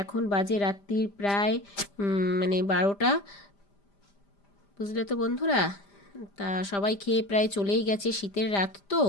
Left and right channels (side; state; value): right; late; 5.0 ms